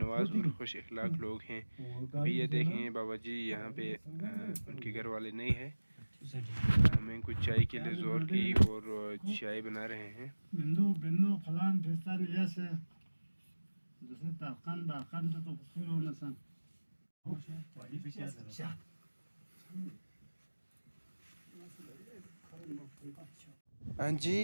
और खुश अखलाक लोग हैं। अभी ये देखें बाबा जी यहाँ पे उनके घर वाले नहीं है। हमें कुछ चाय के लिए ज़ोर की और चाय बना रहे हैं। हाँ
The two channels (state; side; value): inverted; both; correlation -1.00